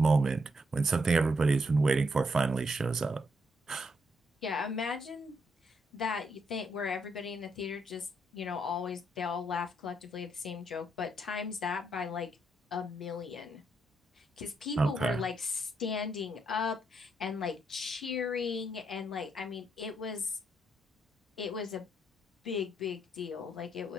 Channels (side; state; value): both; normal; correlation 0.77